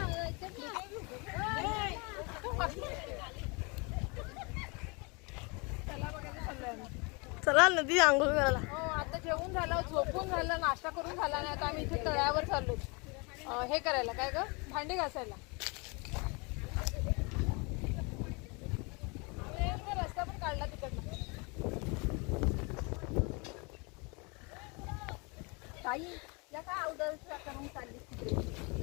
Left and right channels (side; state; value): right; quieter; 30.0 dB